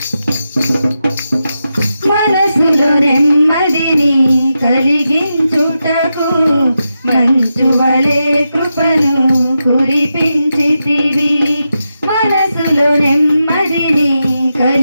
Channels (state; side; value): inverted; both; correlation -0.88